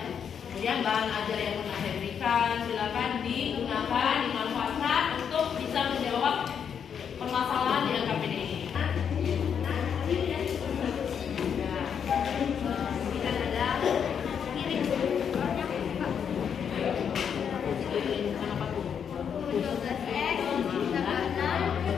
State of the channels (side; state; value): right; quieter; 7.6 dB